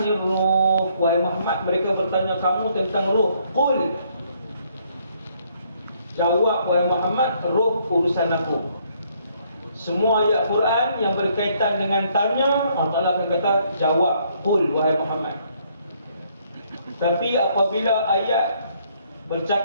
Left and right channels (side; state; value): both; inverted; correlation -0.68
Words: ruh, wahai Muhammad mereka bertanya kamu tentang ruh, qul, jawab wahai Muhammad, ruh urusan aku. Semua ayat Quran yang berkaitan dengan tanya, Allah akan kata jawab, qul wahai Muhammad. Tapi apabila ayat